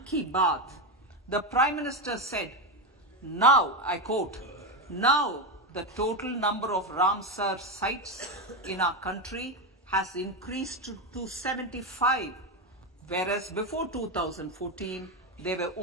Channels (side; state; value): both; normal; correlation 0.12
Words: Ki Baat, the Prime Minister said, now, I quote, now the total number of Ramsar sites in our country has increased to 75, whereas before 2014, there were